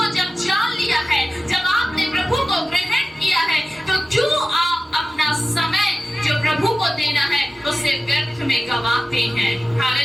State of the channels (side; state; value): both; normal; correlation 0.95